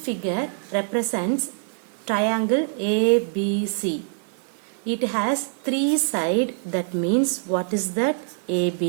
represents triangle ABC. It has three sides, that means what is that?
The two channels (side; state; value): left; silent; digital silence